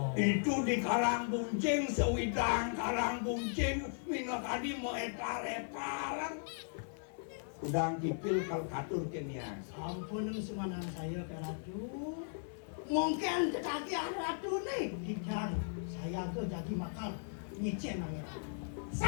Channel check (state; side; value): silent; right; 53 dB below the other